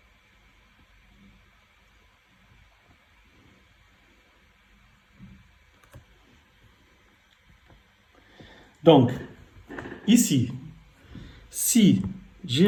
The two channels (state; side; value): identical; both; correlation 1.00